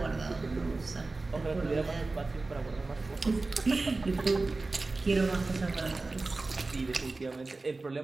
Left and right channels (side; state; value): left; quieter; 3.4 dB